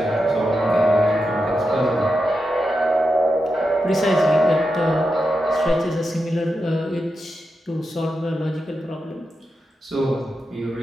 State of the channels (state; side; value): normal; both; correlation 0.88